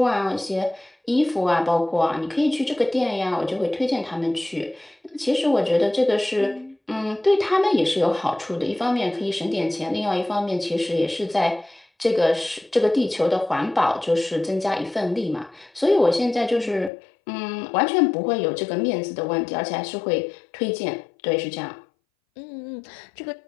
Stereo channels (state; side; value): drops out; right; at 16.9 s